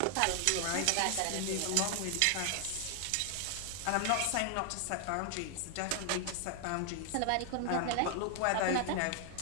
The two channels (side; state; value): both; different; correlation 0.00